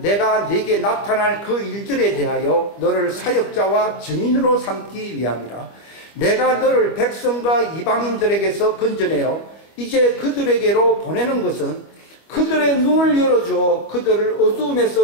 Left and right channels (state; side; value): late; right; 25 ms